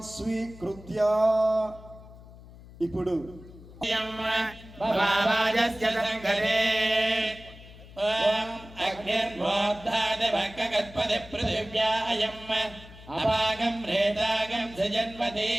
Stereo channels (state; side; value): noise; left; hum, 19 dB below the sound